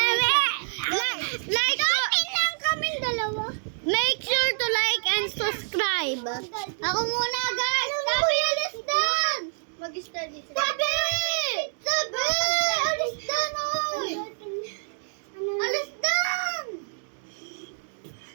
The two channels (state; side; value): silent; left; digital silence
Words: Like lang kaming dalawa. Make sure to like and subscribe. Ako muna guys. Sabi, alis doon! Mag-study sila. Sabi! Alis doon! Alis doon!